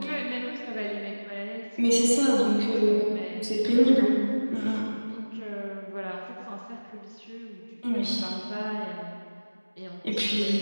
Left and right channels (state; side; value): inverted; both; correlation -1.00